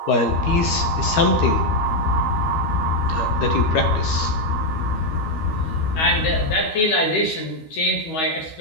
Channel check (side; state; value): right; late; 13 ms